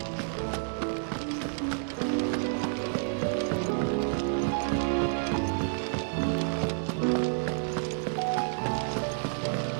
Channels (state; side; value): silent; left; digital silence